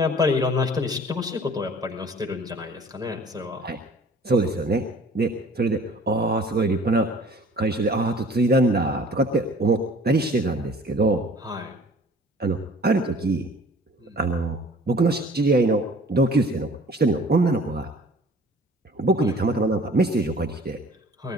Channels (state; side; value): normal; both; correlation 0.50